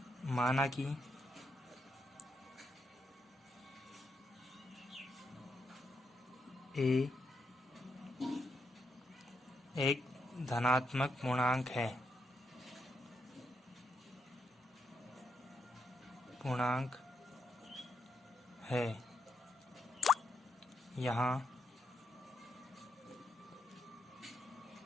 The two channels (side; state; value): both; normal; correlation 0.80